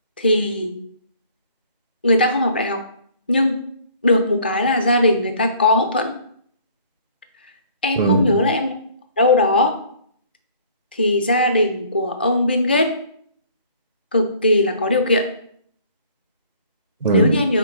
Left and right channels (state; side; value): inverted; both; correlation -0.55